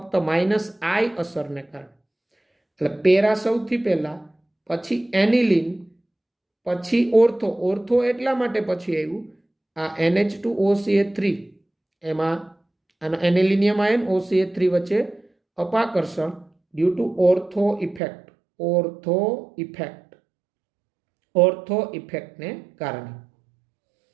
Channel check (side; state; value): left; drops out; at 18.0 s